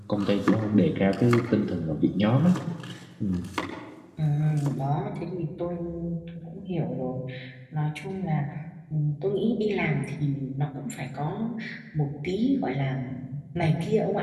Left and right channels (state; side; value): identical; both; correlation 1.00